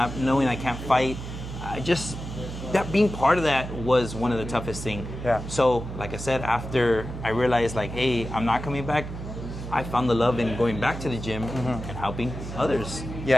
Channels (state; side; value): noise; right; hum, 8 dB below the sound